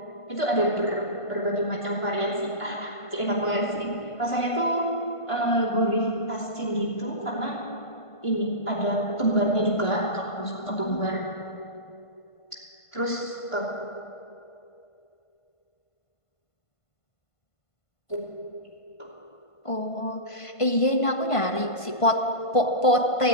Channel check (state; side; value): late; right; 1.5 ms